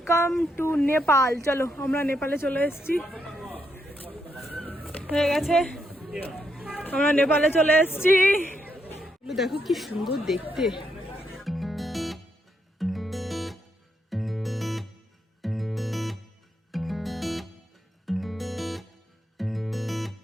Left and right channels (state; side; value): normal; both; correlation 0.79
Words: টু নেপাল। চলো, আমরা নেপালে চলে এসেছি। হয়ে গেছে, আমরা নেপালে চলে এসেছি। দেখো কি সুন্দর দেখতে।